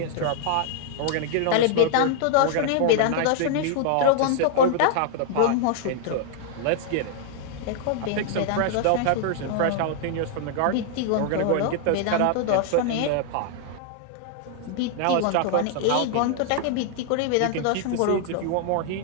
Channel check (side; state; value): both; different; correlation 0.00